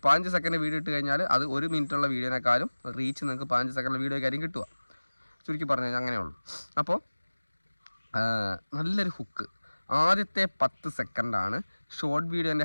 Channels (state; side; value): inverted; both; correlation -1.00